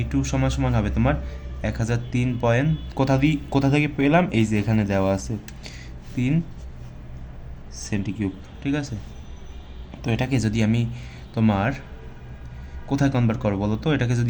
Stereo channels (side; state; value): both; identical; correlation 1.00